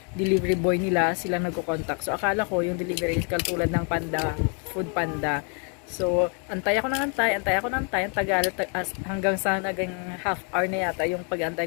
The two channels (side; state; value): right; quieter; 38.2 dB